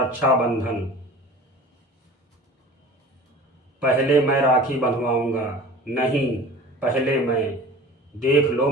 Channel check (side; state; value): both; normal; correlation 0.41